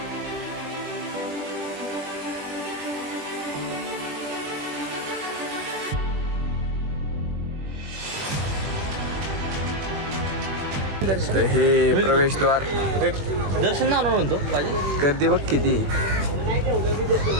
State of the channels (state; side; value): late; left; 21 ms